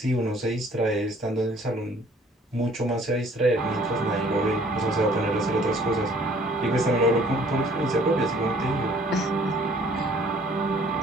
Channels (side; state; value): both; normal; correlation 0.57